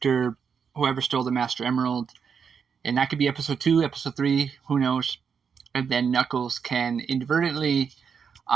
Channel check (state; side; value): quieter; left; 6.6 dB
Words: whoever stole the Master Emerald. And that could be episode 2, episode 3, who knows. And then Knuckles can inadvertently